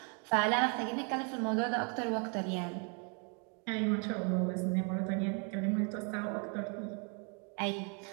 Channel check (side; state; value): left; quieter; 37.3 dB